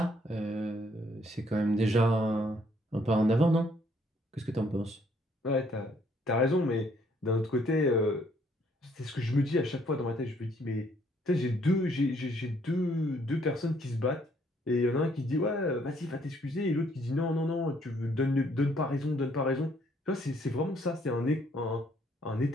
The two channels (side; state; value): both; normal; correlation 0.66